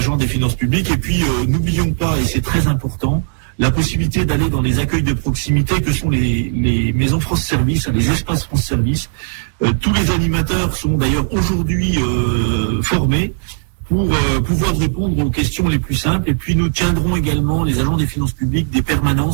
des finances publiques. Et puis n'oublions pas, et c'est très important, la possibilité d'aller dans les accueils de proximité que sont les maisons France Service, les espaces France Service. Tous les animateurs sont d'ailleurs aujourd'hui formés pour pouvoir répondre aux questions les plus simples. Et puis nous tiendrons également, les agents des finances publiques, des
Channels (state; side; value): silent; left; digital silence